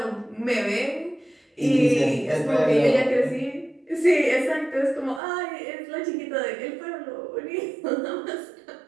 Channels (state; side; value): drops out; left; at 5.2 s